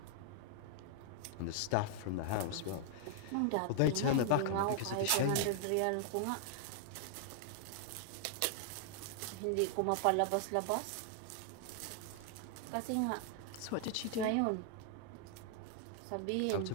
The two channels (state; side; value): different; both; correlation 0.00